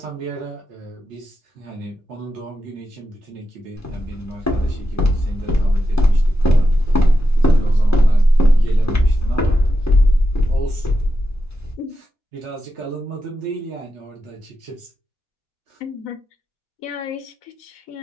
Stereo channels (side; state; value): both; normal; correlation 0.88